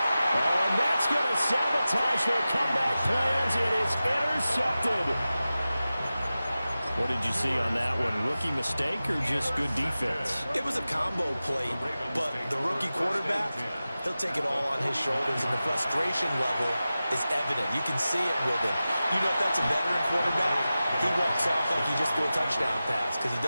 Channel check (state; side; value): inverted; both; correlation -0.95